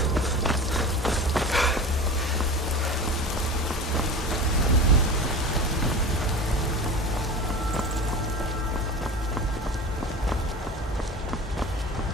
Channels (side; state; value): both; normal; correlation 0.33